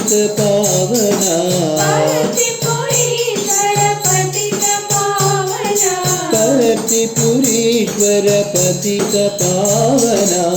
पावना पर्तिपुरीश्वर पतित पावना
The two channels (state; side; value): identical; both; correlation 1.00